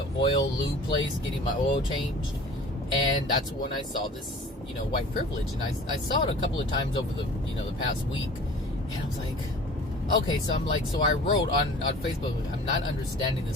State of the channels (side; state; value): both; normal; correlation 0.44